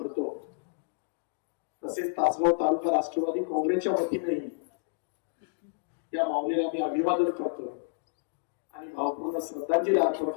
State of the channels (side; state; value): right; silent; digital silence